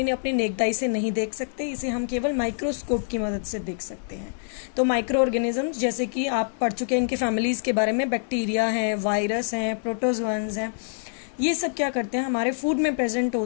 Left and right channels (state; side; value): silent; right; digital silence